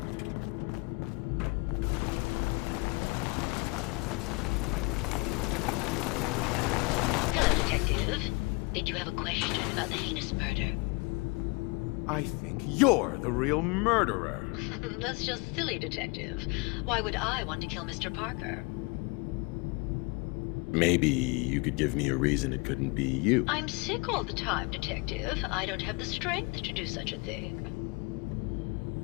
Hello, Detective. Did you have a question about the heinous murder? I think you're the real murderer. That's just silly, Detective. Why would I want to kill Mr. Parker? Maybe you could give me a reason it couldn't be you. I'm sick all the time, Detective. I don't have the strength to do such a thing.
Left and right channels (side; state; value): right; quieter; 28.2 dB